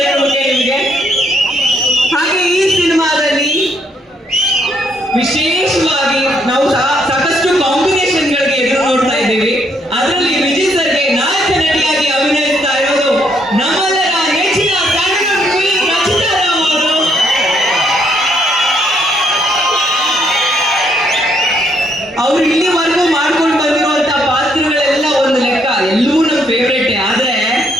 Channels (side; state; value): both; normal; correlation 0.72